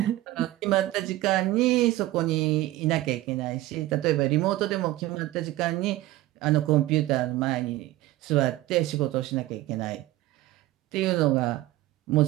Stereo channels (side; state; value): left; quieter; 16.5 dB